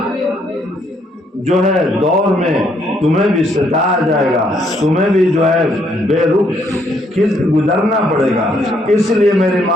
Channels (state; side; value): normal; both; correlation 0.70